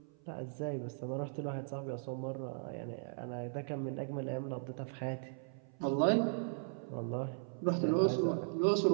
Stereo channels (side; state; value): left; silent; 53 dB below the other